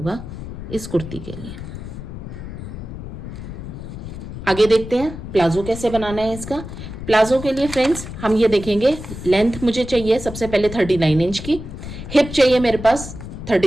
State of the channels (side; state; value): left; noise; rumble, 10 dB below the sound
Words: इस कुर्ती के लिए। आगे देखते हैं प्लाजो कैसे बनाना है इसका। प्लाजो के लिए फ्रेंड्स हम ये देखेंगे, लेंथ मुझे चाहिए सबसे पहले 39 इंच की, हिप चाहिए मेरे पास